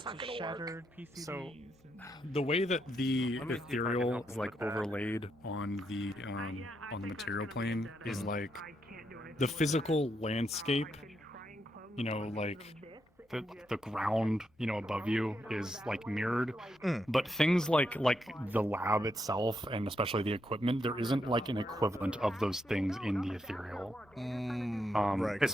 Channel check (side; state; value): both; normal; correlation 0.81